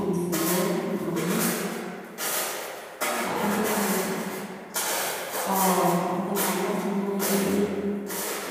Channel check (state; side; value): identical; both; correlation 1.00